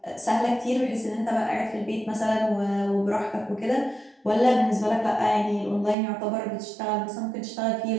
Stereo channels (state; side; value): drops out; left; at 6.0 s